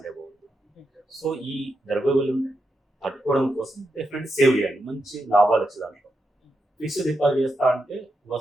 బాగుంది. సో ఈ ద్రవ్యోల్బణం తట్టుకోవడం కోసం డెఫినెట్లీ సేవ్ చేయాలి, మంచి లాభాలు వచ్చే దాంట్లో. ఫిక్స్డ్ డిపాజిట్ చేస్తా అంటే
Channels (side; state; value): both; normal; correlation 0.85